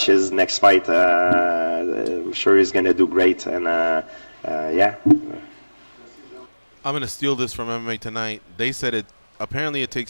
his next fight. I'm sure he's gonna do great, and yeah. I'm going to steal this from MMA Tonight. They said apparently it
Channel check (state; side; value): inverted; both; correlation -1.00